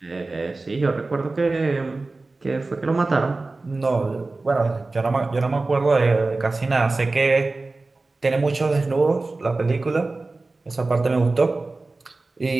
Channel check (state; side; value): quieter; left; 3.4 dB